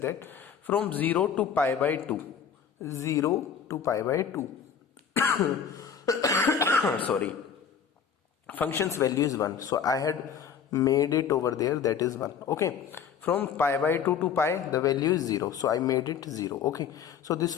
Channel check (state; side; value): quieter; right; 7.5 dB